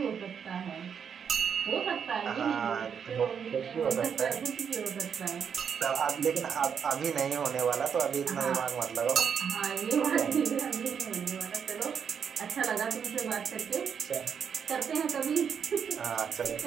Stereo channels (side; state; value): left; quieter; 7.3 dB